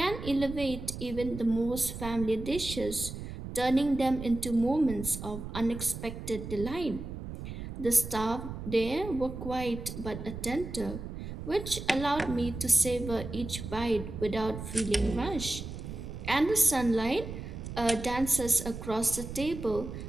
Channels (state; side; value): noise; right; rumble, 9 dB below the sound